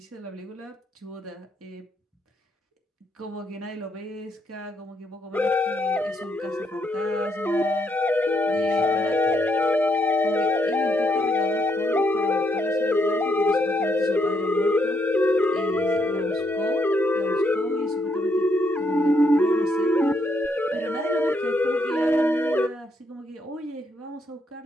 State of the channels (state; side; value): normal; both; correlation 0.75